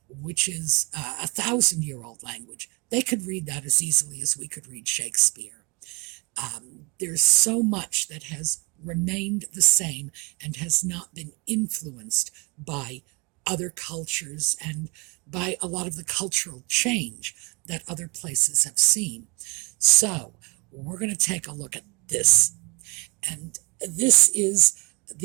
which is a 1,000-year-old language. They could read that as easily as we could read Shakespeare. There's so much that has remained the same and has not been influenced by other cultures and by a lot of the cultural change that other places have seen. So we're going to take a look at this. And this is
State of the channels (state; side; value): quieter; left; 29.7 dB